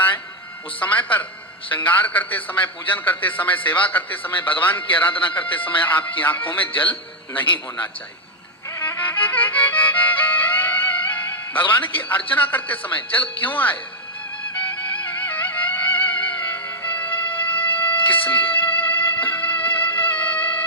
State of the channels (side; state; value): both; normal; correlation -0.01